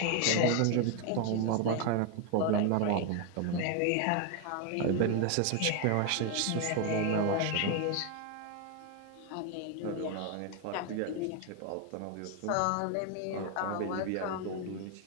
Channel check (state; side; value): different; both; correlation 0.01